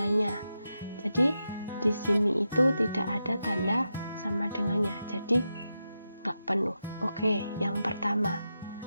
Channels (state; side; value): inverted; both; correlation -0.88